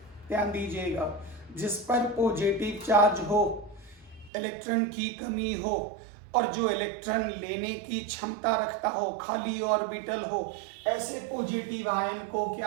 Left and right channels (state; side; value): drops out; left; at 4.3 s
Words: ध्यान दीजिएगा, जिस पर पॉजिटिव चार्ज हो, इलेक्ट्रॉन की कमी हो और जो इलेक्ट्रॉन लेने की क्षमता रखता हो, खाली ऑर्बिटल हो, ऐसे पॉजिटिव आयन को